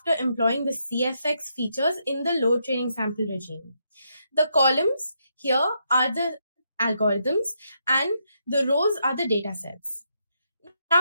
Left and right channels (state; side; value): inverted; both; correlation -0.79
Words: employing the CFX features in the low training sample regime. The columns here are the algorithms and the rows are the data sets.